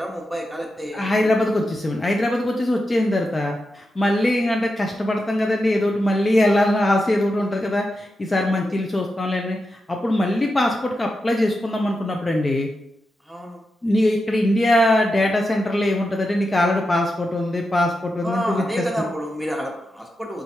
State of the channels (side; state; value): both; normal; correlation 0.88